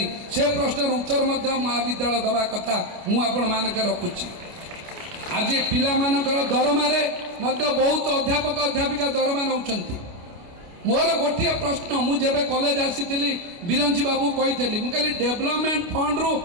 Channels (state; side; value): late; left; 29 ms